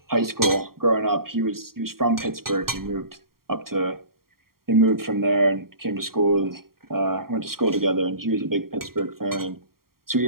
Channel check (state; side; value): late; left; 0.93 ms